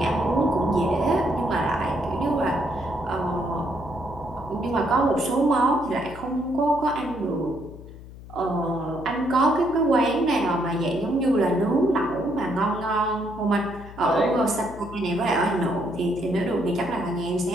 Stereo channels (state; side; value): noise; left; hum, 16 dB below the sound